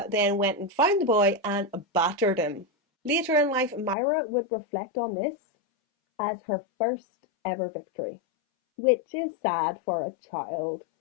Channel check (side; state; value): right; drops out; at 4.0 s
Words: then went and found the boy and battered him. Later in life, Myra would reflect on this as her first ever victory, which is sad for a child